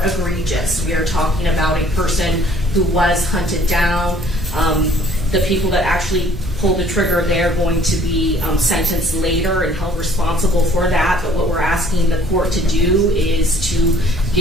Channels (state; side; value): normal; both; correlation 0.56